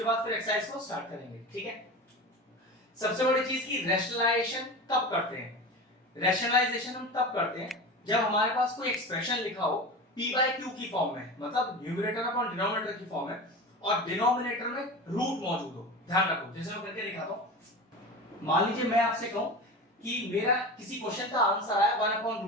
बाद फिर एक्सरसाइज को स्टार्ट करेंगे। ठीक है, सबसे बड़ी चीज की रैशनलाइजेशन कब करते हैं। रैशनलाइजेशन हम तब करते हैं जब हमारे पास कोई एक्सप्रेशन लिखा हो p बाय q की फॉर्म में, मतलब न्यूमरेटर अपॉन डिनोमिनेटर की फॉर्म में, और डिनोमिनेटर में रूट मौजूद हो। ध्यान रखो, जैसे मैं करके दिखाता हूं। मान लीजिए मैं आपसे कहूं कि मेरा किसी क्वेश्चन का आंसर आया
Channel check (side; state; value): both; normal; correlation 0.30